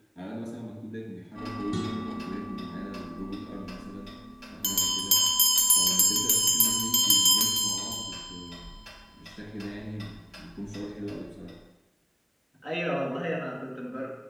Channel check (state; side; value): identical; both; correlation 1.00